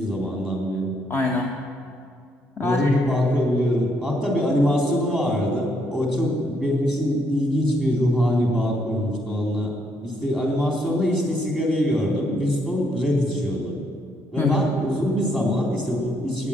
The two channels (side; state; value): both; normal; correlation 0.74